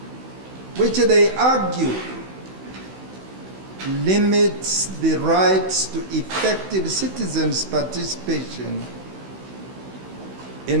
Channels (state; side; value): late; left; 16 ms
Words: which they argue limits the rights to effective citizens' participation